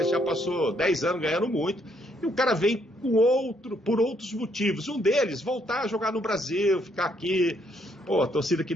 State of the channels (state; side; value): normal; both; correlation 0.71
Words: já passou 10 anos ganhando muito. E o cara vem por outros motivos. Um deles, voltar a jogar no Brasil, ficar aqui, torcida que